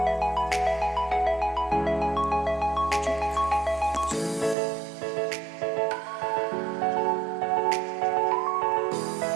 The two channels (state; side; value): drops out; left; at 4.5 s